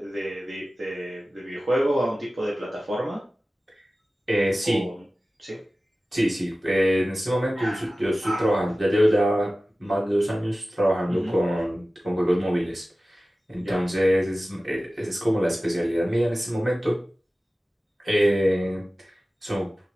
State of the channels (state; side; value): normal; both; correlation 0.96